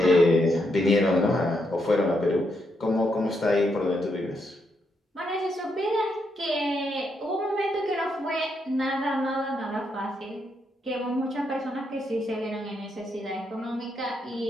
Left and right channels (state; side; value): normal; both; correlation 0.79